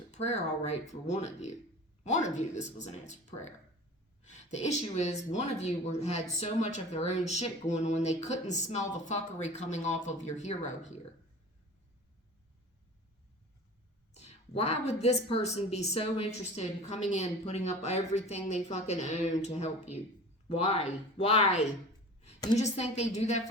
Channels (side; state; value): both; normal; correlation 0.39